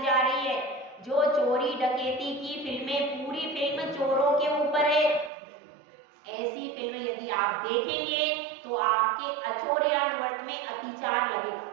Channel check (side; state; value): left; drops out; at 5.3 s